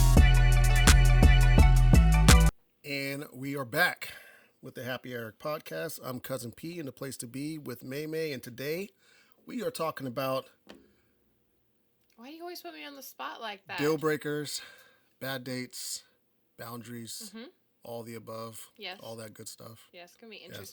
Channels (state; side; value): identical; both; correlation 1.00